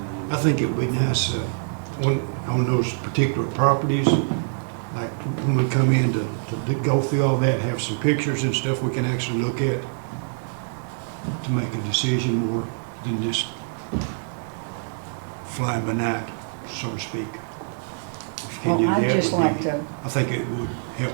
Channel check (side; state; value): left; silent; digital silence